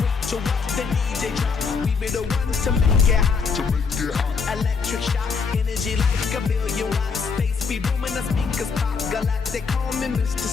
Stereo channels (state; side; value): quieter; right; 5.3 dB